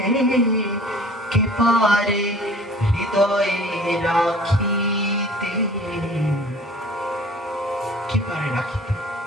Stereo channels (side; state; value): both; normal; correlation 0.48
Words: কে পারে হৃদয়ে রাখিতে, কে পারে রাখিতে?